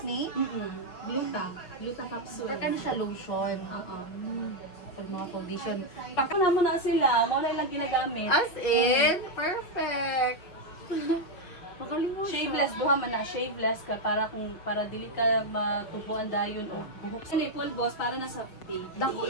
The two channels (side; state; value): right; late; 5.9 ms